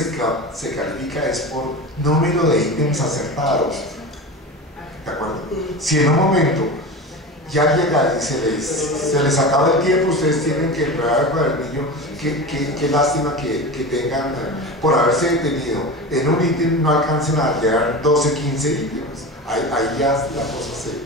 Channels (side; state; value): both; normal; correlation 0.28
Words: califica es por número de ítems acertados. ¿De acuerdo? Si en un momento ya llega y se les acaba el tiempo, ustedes tienen que entregar el cuadernillo, qué lástima que tengan, por haberse detenido en un ítem, no alcancen a llegar 12, 15 ítems. Ahí ya la cosa